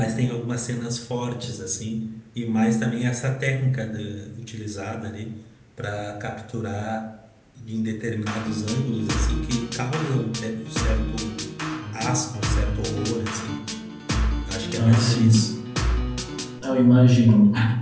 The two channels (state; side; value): identical; both; correlation 1.00